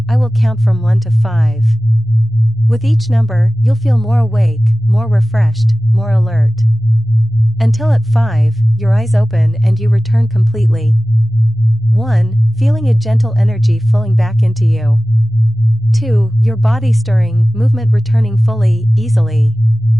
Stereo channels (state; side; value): normal; both; correlation 0.97